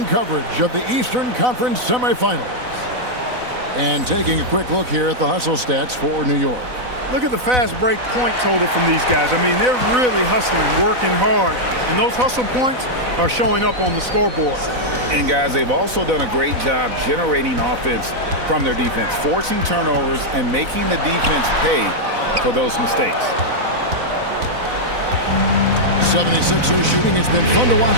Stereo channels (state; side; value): late; left; 4.0 ms